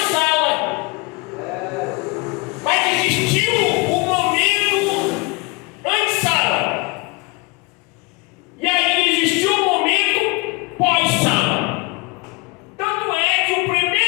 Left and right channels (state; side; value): quieter; right; 26.9 dB